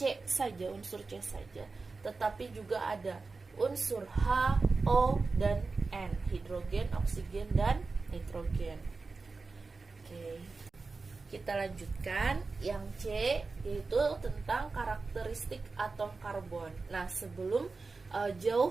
saja, unsur C saja, tetapi juga ada unsur H, O, dan N, hidrogen, oksigen, dan nitrogen. Oke. Kita lanjutkan yang C, yaitu tentang karakteristik atom karbon. Nah, sebelum jauh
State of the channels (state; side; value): quieter; left; 4.0 dB